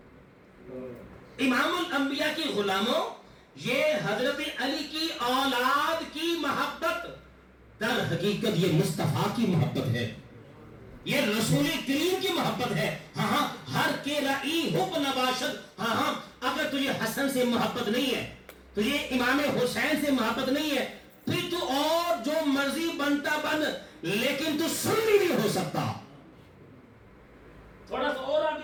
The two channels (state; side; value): identical; both; correlation 1.00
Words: امام الانبیاء کی غلاموں، یہ حضرت علی کی اولاد کی محبت در حقیقت یہ مصطفیٰ کی محبت ہے، یہ رسول کریم کی محبت ہے۔ ہاں، ہر کے رائی حب نباشد، ہاں، اگر تجھے حسن سے محبت نہیں ہے، تجھے امام حسین سے محبت نہیں ہے، پھر تو اور مرضی بنتا بن، لیکن تو سنی نہیں ہو سکتا. تھوڑا سا اور